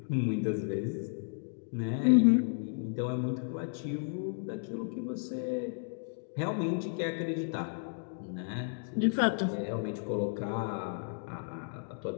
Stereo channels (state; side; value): silent; right; digital silence